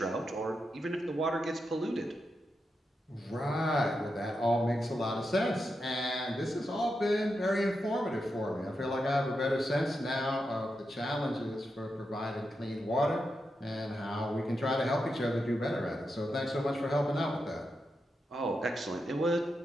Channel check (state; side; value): normal; both; correlation 0.87